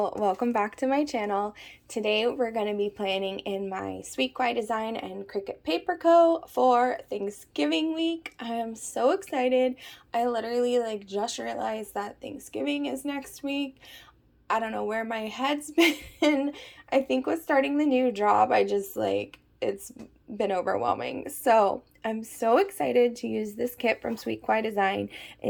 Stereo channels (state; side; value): identical; both; correlation 1.00